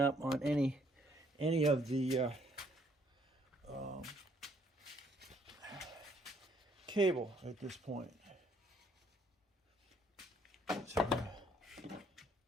on any of the cable at this point. So we're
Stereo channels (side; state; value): both; normal; correlation 0.66